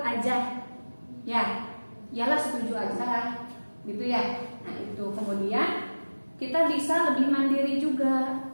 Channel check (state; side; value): inverted; both; correlation -1.00